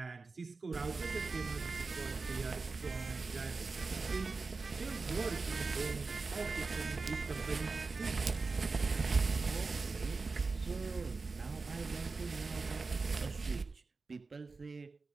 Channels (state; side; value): quieter; left; 4.1 dB